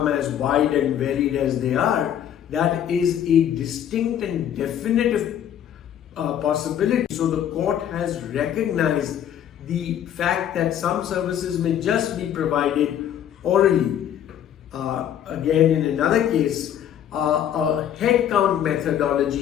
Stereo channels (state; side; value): quieter; right; 10.1 dB